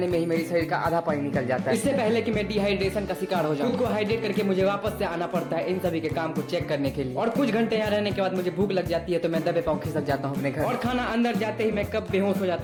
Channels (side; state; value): both; identical; correlation 1.00